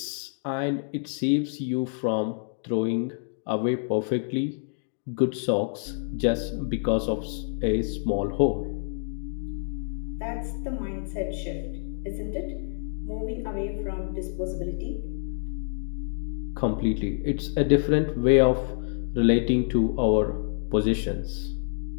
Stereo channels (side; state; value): right; silent; 60 dB below the other